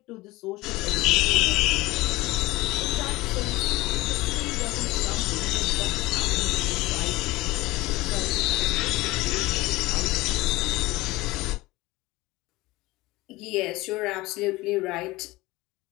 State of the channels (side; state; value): right; quieter; 20.1 dB